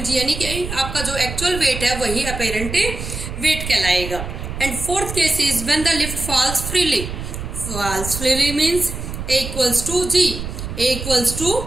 G, यानी कि आपका जो एक्चुअल वेट है वही अपैरेंट वेट कहलाएगा। And fourth case is when the lift falls freely. Falls freely means a equals to g. A equals to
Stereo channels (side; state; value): right; noise; rumble, 7 dB below the sound